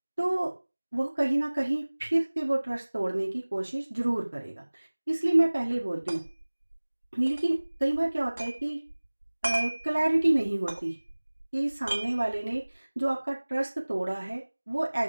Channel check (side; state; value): both; inverted; correlation -1.00